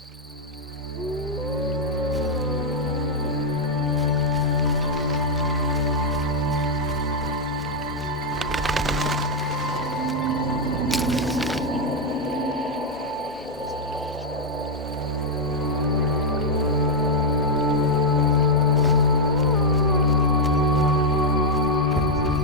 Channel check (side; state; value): both; normal; correlation -0.02